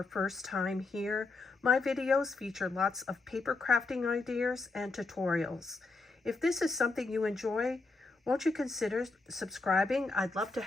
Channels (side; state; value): right; quieter; 3.6 dB